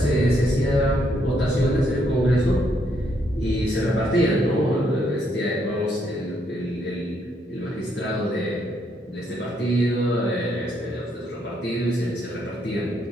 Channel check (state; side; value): normal; both; correlation 0.73